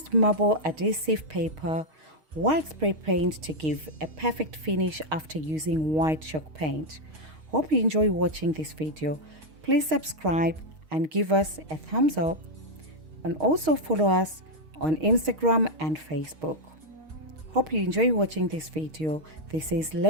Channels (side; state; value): left; late; 6.4 ms